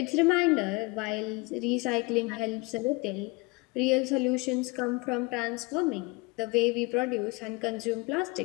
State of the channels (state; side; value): quieter; right; 25.5 dB